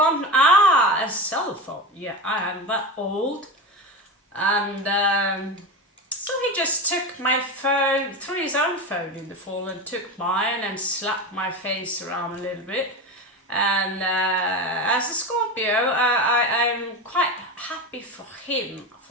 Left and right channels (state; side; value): normal; both; correlation 0.22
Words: a cell phone, yeah, I am that old. And so he just took my phone, threw his own phone in the fall and took mine and slapped my face around a little bit. And as a Scorpio, I'm quite happy for him